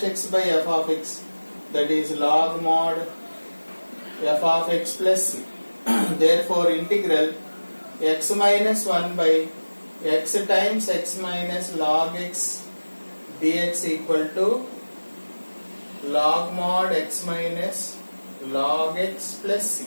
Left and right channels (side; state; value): both; inverted; correlation -1.00